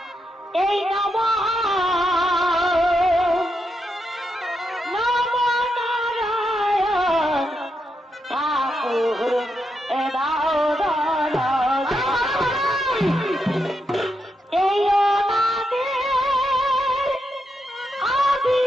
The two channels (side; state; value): both; normal; correlation 0.83